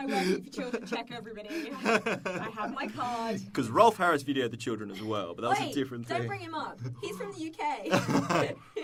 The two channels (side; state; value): both; identical; correlation 1.00